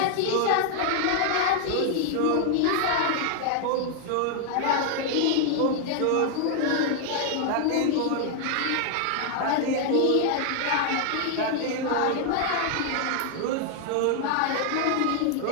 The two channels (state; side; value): different; both; correlation 0.00